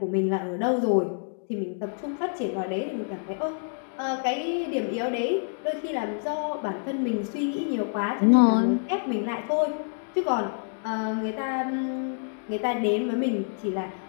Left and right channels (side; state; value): right; silent; digital silence